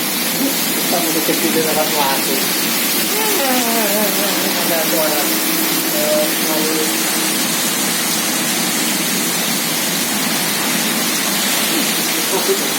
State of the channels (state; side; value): identical; both; correlation 1.00